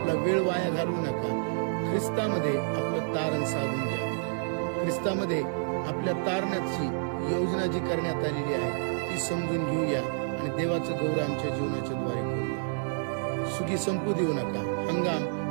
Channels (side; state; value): left; silent; digital silence